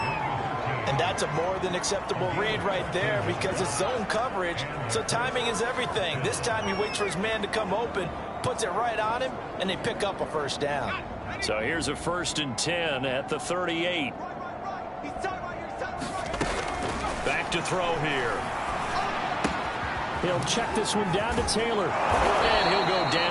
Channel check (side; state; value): both; identical; correlation 1.00